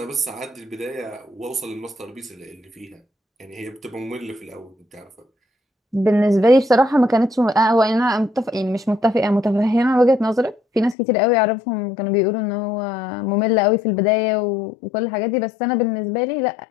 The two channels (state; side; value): drops out; right; at 11.0 s